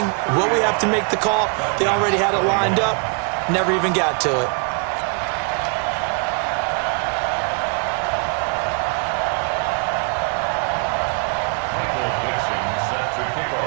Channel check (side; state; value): left; quieter; 37.1 dB